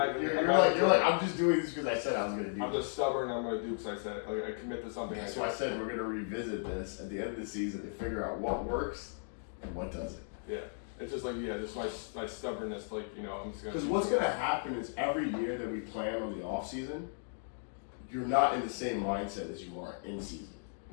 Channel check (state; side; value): silent; right; digital silence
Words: You're like I'm just doing this because I said I was going to do. I'm just stubborn. I'm going to do because I said it. Like I commit to something. So I said we're going to revisit this at the end of the season to figure out what works and what doesn't. Yeah. It's just like, just my stubbornness, like, I'm just going to... Because what's going to happen is every year that we plan on the off season, you're not in the same mindset as you are in season.